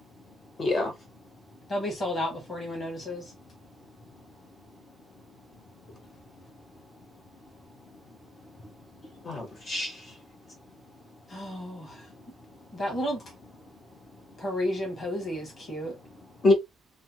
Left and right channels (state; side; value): normal; both; correlation 0.77